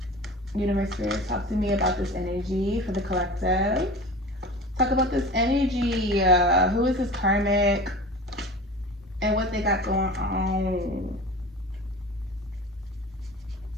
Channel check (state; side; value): normal; both; correlation 0.36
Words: Universe, Spirit, talk to me about this energy for the collective. Talk about this energy. Who is this karmic? And what they got going on.